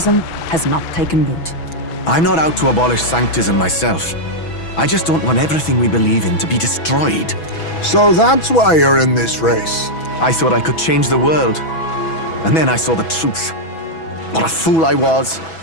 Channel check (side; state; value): right; late; 6.1 ms